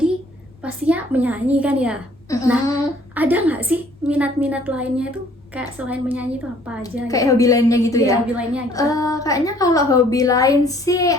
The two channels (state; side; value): normal; both; correlation 0.58